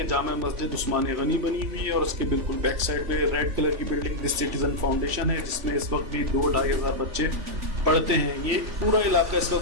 जामा मस्जिद उस्मान गनी बनी हुई है और उसके बिल्कुल बैक साइड पे रेड कलर की बिल्डिंग दिस सिटीजन फाउंडेशन है, जिसमें इस वक्त भी 2-2.5 हज़ार बच्चे पढ़ते हैं। ये पूरा इलाका इस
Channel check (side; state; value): left; late; 3.4 ms